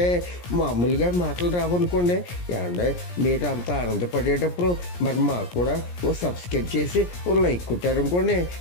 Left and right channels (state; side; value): late; right; 17 ms